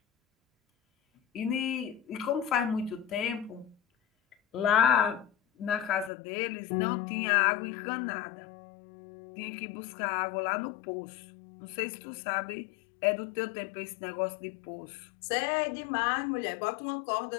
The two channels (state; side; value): drops out; right; at 6.1 s